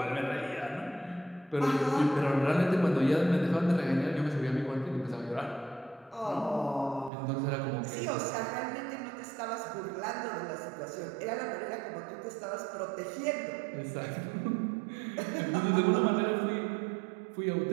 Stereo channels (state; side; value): drops out; left; at 7.1 s